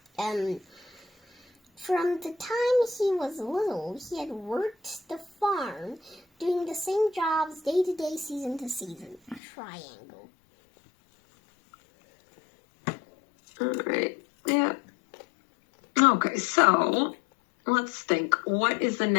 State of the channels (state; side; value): drops out; right; at 9.4 s